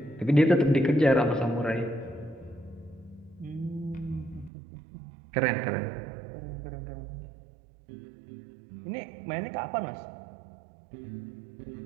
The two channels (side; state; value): left; drops out; at 4.5 s